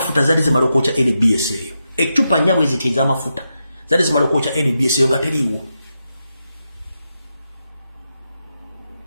zali zimala okwokya NBS eyo echupa nyabwe zitiza amafuta zali zimala okwocha NBS yo nga teriwo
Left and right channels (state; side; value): inverted; both; correlation -0.87